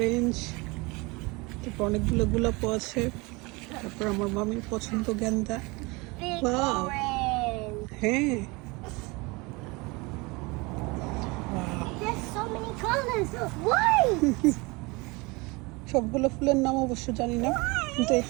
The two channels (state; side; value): quieter; left; 25.7 dB